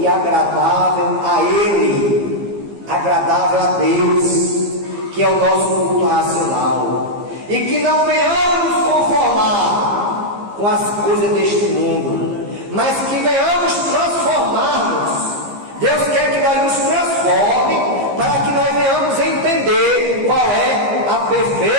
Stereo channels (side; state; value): left; late; 15 ms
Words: agradável a Ele, agradável a Deus, que é o nosso culto racional, e que não venhamos nos conformar com as coisas deste mundo, mas que venhamos transformar-nos. Deus quer que nós nos transforme, para que nós venhamos entender qual é a